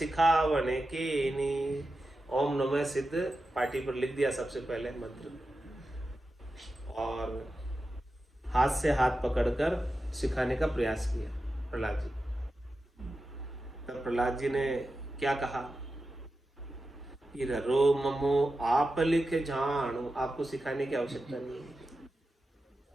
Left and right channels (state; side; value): normal; both; correlation 0.91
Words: कीनी। ओम नमो सिद्ध पाटी पर लिख दिया सबसे पहले मंत्र, और हाथ से हाथ पकड़कर सिखाने का प्रयास किया प्रहलाद जी। तब प्रहलाद जी ने क्या कहा कि रो ममो आप लिख जानो, आपको सिखाने की आवश्यकता नहीं है।